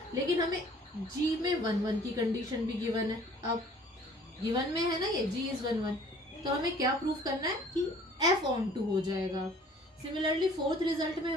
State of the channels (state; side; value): normal; both; correlation 0.53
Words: लेकिन हमें g में 1 1 की कंडीशन भी गिवन है. अब गिवन में है ना ये g इज 1 1, तो हमें क्या प्रूफ करना है कि f ऑन टू हो जाएगा. सिमिलरली फोर्थ रिजल्ट में